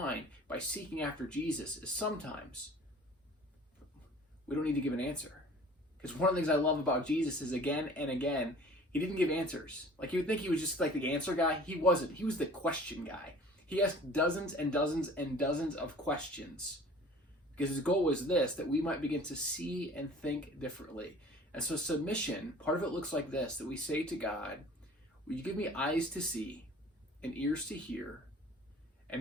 by seeking after Jesus is sometimes we don't need to give an answer. Because one of the things I love about Jesus is, again and again, he didn't give answers. Like, you would think he was just like the answer guy. He wasn't. He was the question guy. He asked dozens and dozens and dozens of questions. Because his goal was this, that we might begin to see and think differently. And so submission, part of it looks like this, that we say to God, will you give me eyes to see and ears to hear,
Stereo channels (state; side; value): normal; both; correlation 0.47